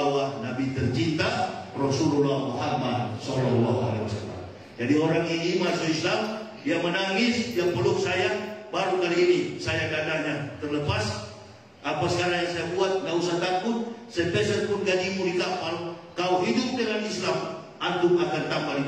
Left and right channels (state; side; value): identical; both; correlation 1.00